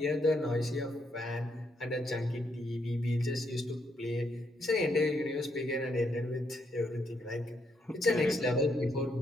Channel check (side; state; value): both; normal; correlation 0.76